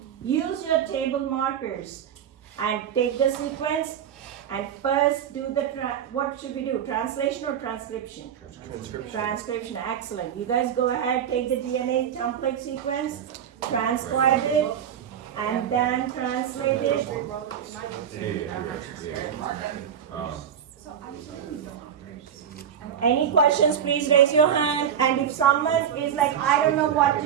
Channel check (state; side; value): quieter; left; 8.8 dB